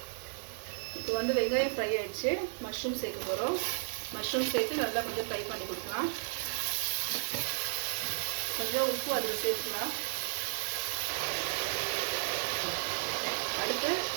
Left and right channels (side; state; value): left; silent; 55 dB below the other